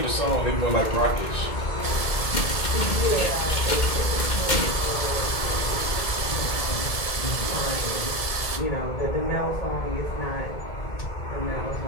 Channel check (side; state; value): right; late; 1.7 ms